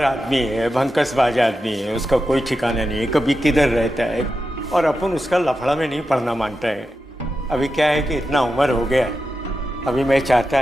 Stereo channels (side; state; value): both; normal; correlation 0.90